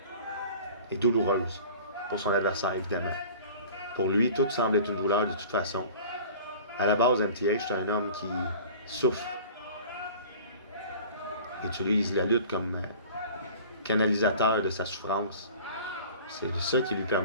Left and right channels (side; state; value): both; inverted; correlation -0.43